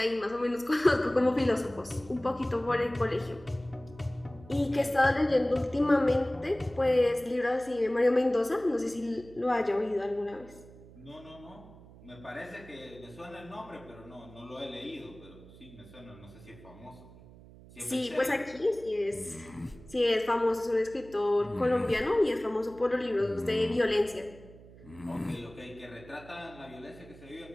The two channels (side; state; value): right; noise; hum, 20 dB below the sound